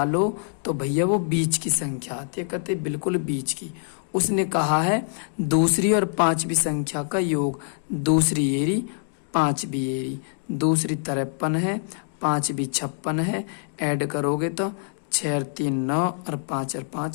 तो भैया वो बीच की संख्या आती है, कहते बिल्कुल बीच की। उसने कहा है दूसरी और 5वीं संख्या का योग, दूसरी एरी 5वीं एरी, दूसरी 53 है, 5वीं 56 है, ऐड करोगे तो 6 और 3 9 और 5 और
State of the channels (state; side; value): silent; right; digital silence